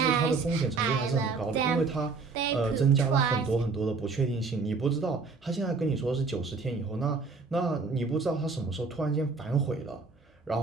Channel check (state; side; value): quieter; left; 4.4 dB